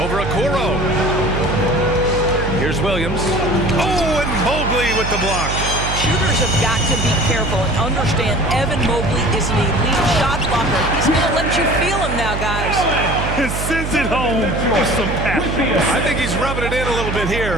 Okoro. Here's Williams. Oh, and Mobley with the block. Shooters have got to be careful and understand Evan Mobley is an elite shot blocker. He's going to let you feel him now, guys. He sends it home with some passion. I think he's rubbing it in a little bit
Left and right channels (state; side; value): noise; right; hum, 4 dB below the sound